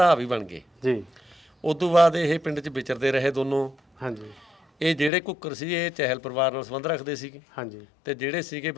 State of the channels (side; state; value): right; drops out; at 5.1 s